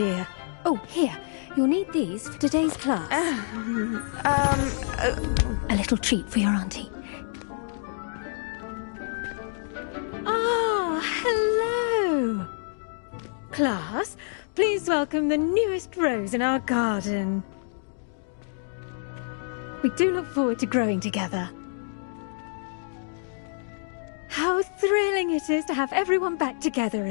Oh, here. You'll need these for today's class. A little treat for your auntie. Ah, hello. Class, please welcome the newest rose in our garden. We do look forward to growing together. How thrilling it is to have everyone back together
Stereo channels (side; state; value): right; silent; digital silence